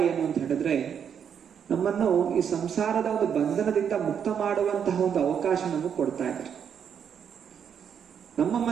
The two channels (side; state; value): left; quieter; 7.9 dB